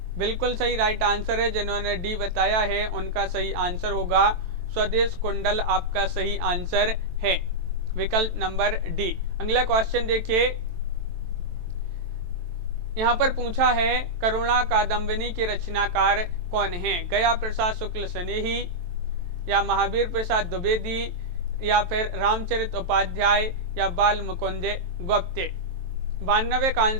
बिल्कुल सही राइट आंसर है, जिन्होंने डी बताया है उनका सही आंसर होगा स्वदेश कुंडल, आपका सही आंसर है विकल्प नंबर डी। अगला क्वेश्चन देखिए, यहाँ पर पूछा है करुणा कादम्बिनी के रचनाकार कौन हैं? गया प्रसाद शुक्ल स्नेही, या महावीर प्रसाद द्विवेदी, या फिर रामचरित उपाध्याय, या बाल मुकुंद गुप्त। 92 का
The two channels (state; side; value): late; left; 23 ms